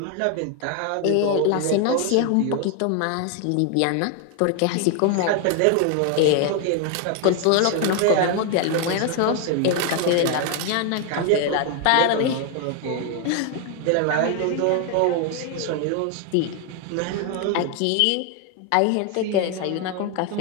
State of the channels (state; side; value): different; both; correlation 0.01